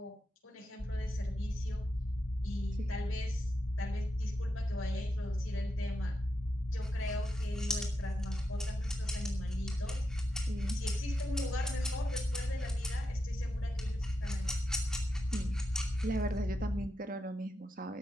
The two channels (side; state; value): both; normal; correlation 0.86